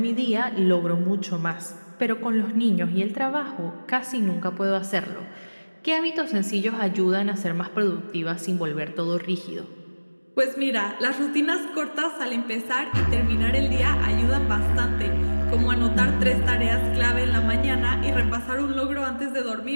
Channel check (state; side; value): inverted; both; correlation -1.00